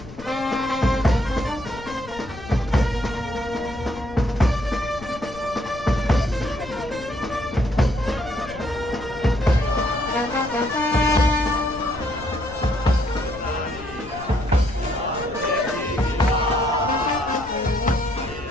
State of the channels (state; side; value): noise; left; rumble, 16 dB below the sound